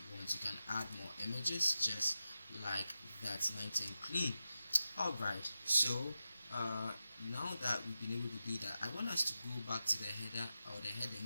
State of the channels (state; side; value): inverted; both; correlation -0.91